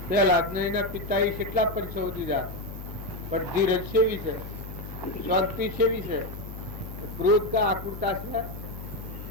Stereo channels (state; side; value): noise; left; hum, 11 dB below the sound